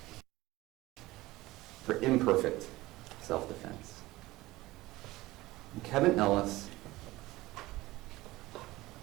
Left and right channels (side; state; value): left; quieter; 18.7 dB